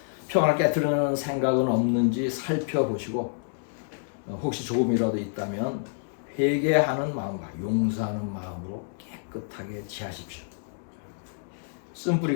평안을 깨트리는 생각은 없는지 살펴보시고 혹시 조금이라도 있다면 회개하는 마음과 용서하는 마음으로 깨끗하게 지하십시오.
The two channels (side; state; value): right; silent; digital silence